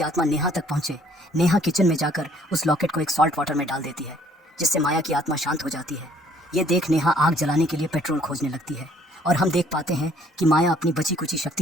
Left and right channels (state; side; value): normal; both; correlation 0.61